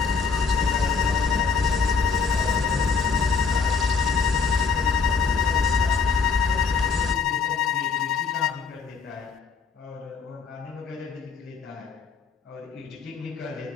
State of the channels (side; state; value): right; quieter; 5.4 dB